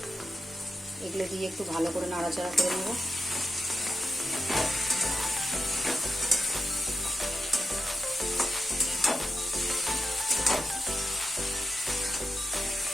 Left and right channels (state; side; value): normal; both; correlation 0.90